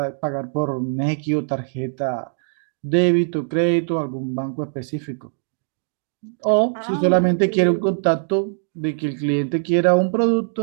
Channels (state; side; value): silent; left; digital silence